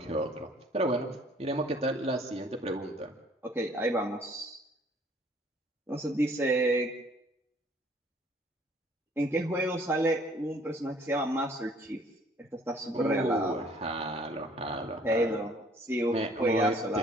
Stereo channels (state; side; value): normal; both; correlation 0.58